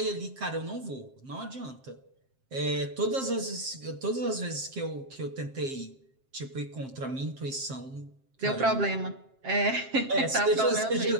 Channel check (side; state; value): left; late; 7.6 ms